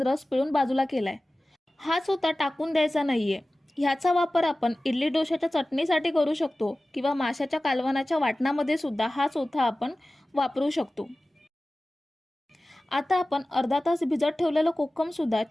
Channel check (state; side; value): normal; both; correlation 0.97